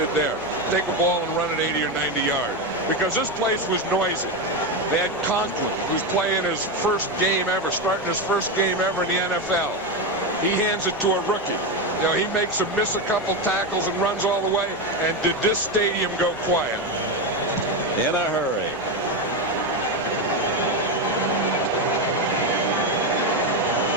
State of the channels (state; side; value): normal; both; correlation 0.12